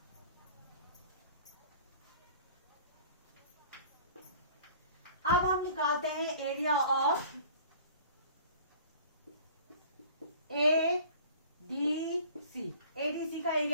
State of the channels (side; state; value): both; inverted; correlation -0.48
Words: अब हम निकालते हैं एरिया ऑफ ADC। ADC का